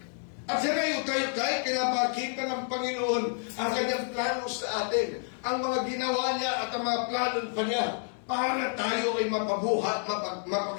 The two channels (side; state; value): right; silent; 58 dB below the other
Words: At sinayutay-utay, kinapakita ng Panginoon ang kanyang plano sa atin. Ang mga ginawa niya at ang mga plano pa niya para tayo ay mapabuhat,